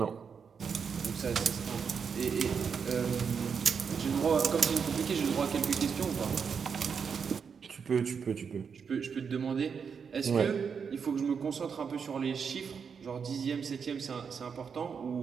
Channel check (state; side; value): quieter; left; 6.3 dB